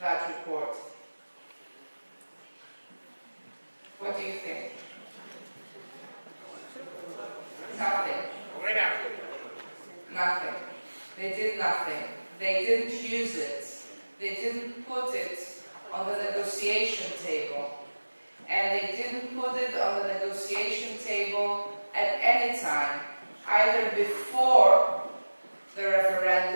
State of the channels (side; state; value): both; inverted; correlation -1.00